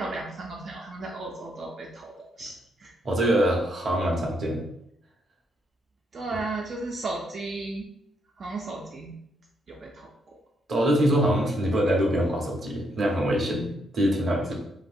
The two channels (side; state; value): both; normal; correlation 0.76